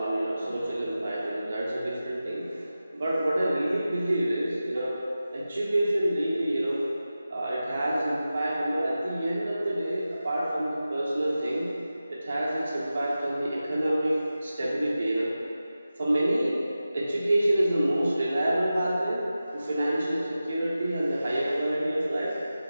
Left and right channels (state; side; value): inverted; both; correlation -0.94